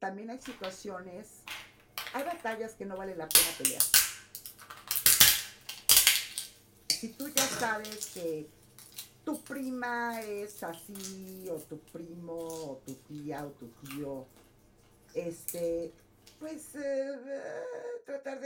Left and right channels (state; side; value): identical; both; correlation 1.00